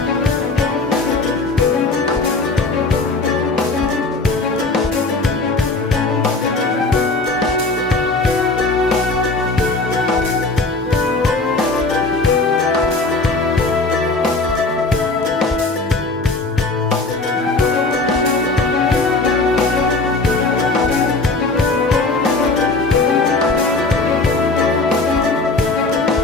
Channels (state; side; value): quieter; right; 3.4 dB